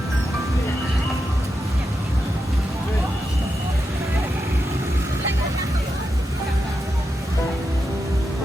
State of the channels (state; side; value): normal; both; correlation 0.87